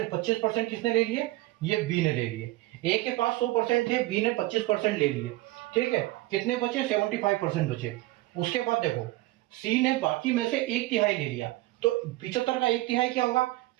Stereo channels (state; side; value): quieter; left; 18.6 dB